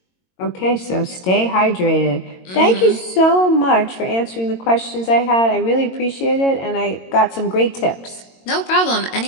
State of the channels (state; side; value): late; right; 22 ms